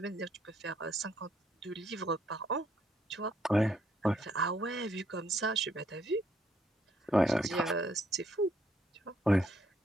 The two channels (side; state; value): both; normal; correlation 0.71